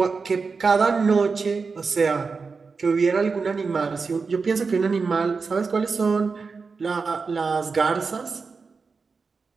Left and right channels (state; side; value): quieter; left; 4.7 dB